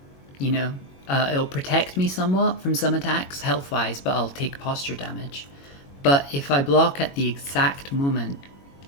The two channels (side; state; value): right; late; 21 ms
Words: you know, it'll protect me somewhat from some attacks health-wise, but I'll take posture damage. But if I block at the exact moment